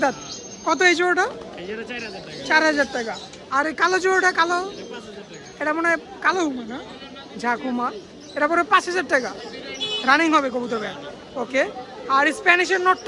কত এই জোড়াটা? 4000 টাকা। আর এই কালো জোড়াটা? কালো এটা মনে হয় কালো হুমা না, ঝাকুমা। এটা পরে 5000 টাকা। রানিং হবে কবুতর। ওকে। আর স্প্যানিশের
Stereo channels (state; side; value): identical; both; correlation 1.00